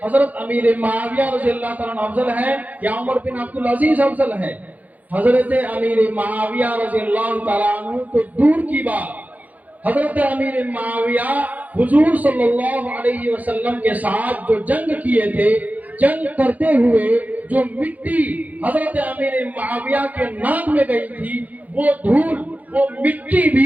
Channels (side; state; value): left; late; 0.078 ms